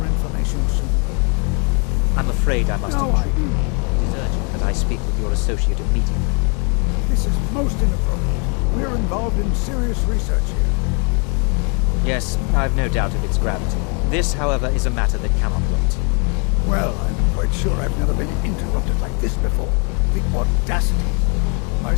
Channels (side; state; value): right; quieter; 35.8 dB